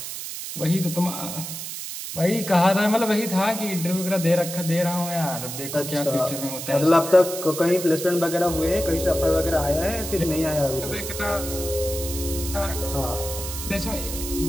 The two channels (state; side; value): noise; right; hiss, 7 dB below the sound